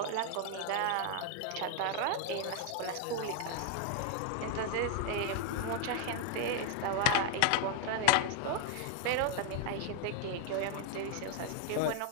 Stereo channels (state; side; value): different; both; correlation 0.00